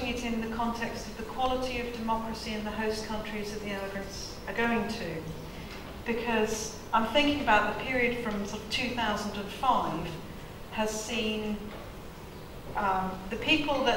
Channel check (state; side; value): identical; both; correlation 1.00